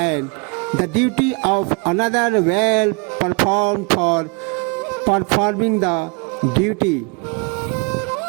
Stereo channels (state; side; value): quieter; left; 32.8 dB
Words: the duty of another well performed for performing the duty